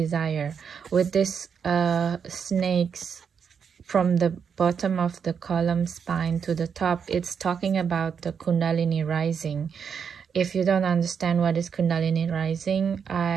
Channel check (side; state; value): left; quieter; 6.8 dB